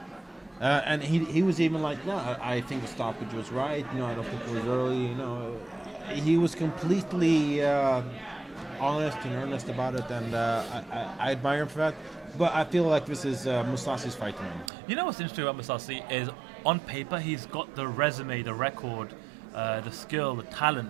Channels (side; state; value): left; drops out; at 14.7 s